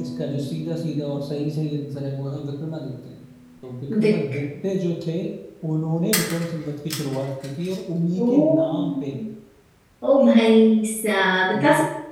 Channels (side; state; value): both; identical; correlation 1.00